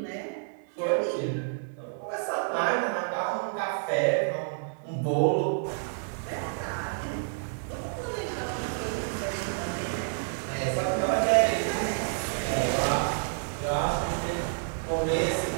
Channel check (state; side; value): silent; left; 58 dB below the other